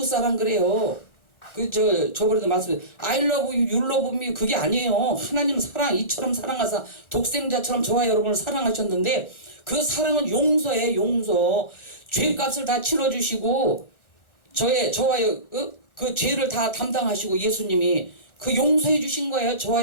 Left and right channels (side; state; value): right; late; 1.3 ms